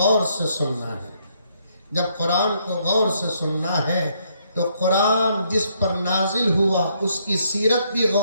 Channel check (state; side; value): inverted; both; correlation -0.71